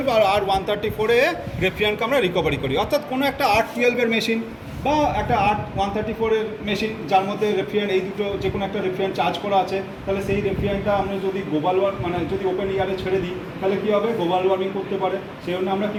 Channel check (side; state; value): both; identical; correlation 1.00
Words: আর R134 রেফ্রিজারেন্টকে আমরা রিকভারি করি। অর্থাৎ কোনো একটা R12 মেশিন বা একটা R134 মেশিন যার মধ্যে রেফ্রিজারেন্ট, এই দুটো যে কোনো একটা রেফ্রিজারেন্ট চার্জ করা আছে, তাহলে সেই রেফ্রিজারেন্টটা আমরা যদি গ্লোবাল মানে যদি ওপেন এয়ারে ছেড়ে দিই তাহলে কী হবে, গ্লোবাল ওয়ার্মিং করতে পারে। সেই জন্য আমরা কী